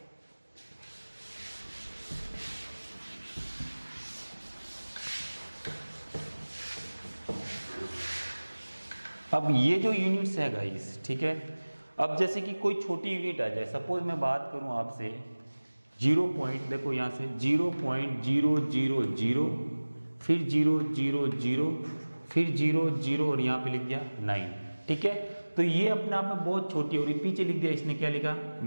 अब ये जो यूनिट्स है गाइस, ठीक है, अब जैसे कि कोई छोटी यूनिट आ जाए, सपोज मैं बात करूं आपसे 0 पॉइंट, देखो यहाँ से 0.000, फिर 000, फिर 00 और यहाँ पे लिख दिया 9, ठीक है। तो ये अपने आप में बहुत छोटी, और पीछे लिख दिया, इसने क्या लिखा,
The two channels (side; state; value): both; inverted; correlation -1.00